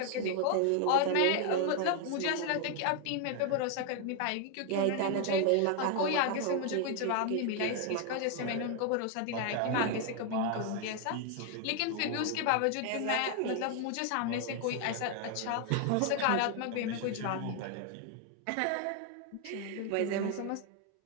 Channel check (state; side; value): different; both; correlation 0.00